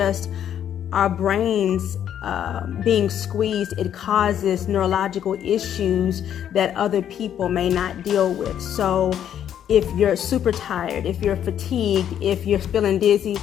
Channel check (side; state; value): right; quieter; 9.8 dB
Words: our brains being squeezed, it causes neurological issues that other people may not deal with. So if you're super tired, if you're fatigued, if you're feeling dizzy,